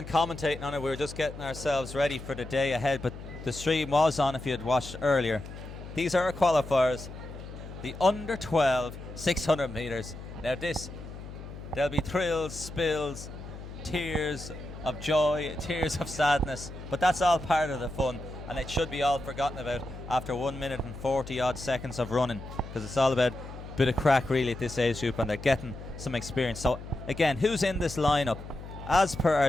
commentating on it. We were just getting ourselves ready for the day ahead. But the stream was on if you had watched earlier. These are our qualifiers. The under 12 600 metres. Now there'll be thrills, spills, tears of joy, tears of sadness, but that's all part of the fun, and it should be all forgotten about after 1 minute and 40 odd seconds of running, because it's all about a bit of crack really at this age group, and they're getting some experience. So again, who's in this lineup? As per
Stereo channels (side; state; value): left; noise; hum, 12 dB below the sound